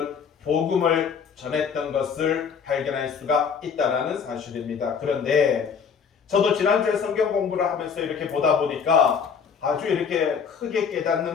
복음을 전했던 것을 발견할 수가 있다는 사실입니다. 그런데 저도 지난주에 성경 공부를 하면서 이렇게 보다 보니까 아주 이렇게 크게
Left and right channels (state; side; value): quieter; right; 6.5 dB